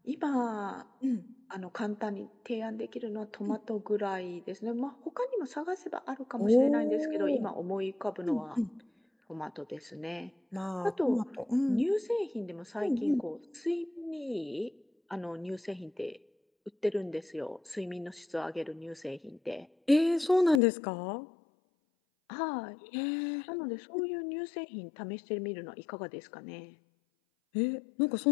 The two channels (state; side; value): drops out; right; at 20.6 s